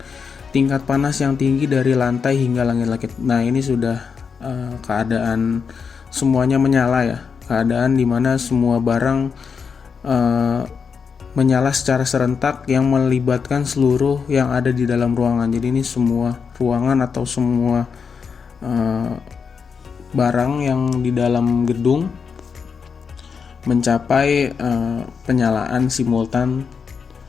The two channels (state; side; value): quieter; right; 6.0 dB